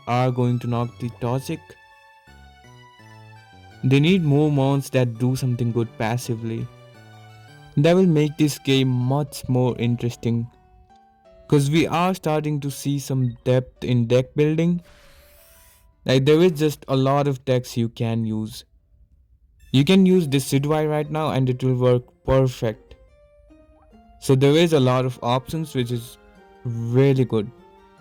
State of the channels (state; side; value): identical; both; correlation 1.00